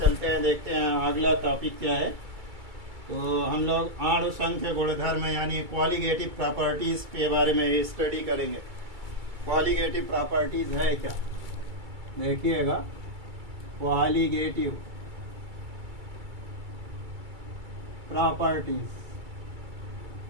हैं। देखते हैं अगला टॉपिक क्या है। तो हम लोग अणु संख्य गुणधर्म यानी क्वालिटेटिव प्रॉपर्टीज के बारे में स्टडी करेंगे। क्वालिटेटिव प्रॉपर्टीज है क्या, देखिएगा। क्वालिटेटिव प्रॉपर्टीज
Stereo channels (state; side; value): late; left; 2.3 ms